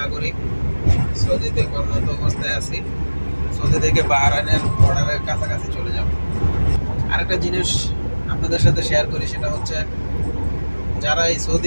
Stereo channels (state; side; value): inverted; both; correlation -1.00